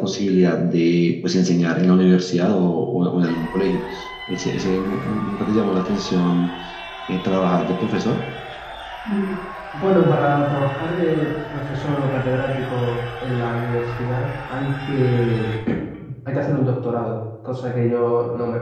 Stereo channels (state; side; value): identical; both; correlation 1.00